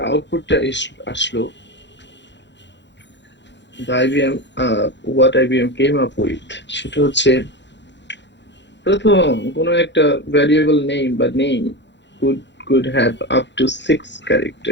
আউটপুটটা আসলো, the IBM what IBM came up with সেটা হচ্ছে প্রথম কোনো একটা ভ্যারিয়েবল নেম বা name could have up to 6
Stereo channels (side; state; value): right; late; 0.52 ms